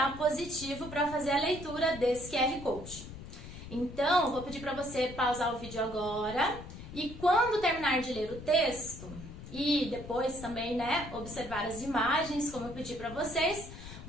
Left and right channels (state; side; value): noise; left; rumble, 13 dB below the sound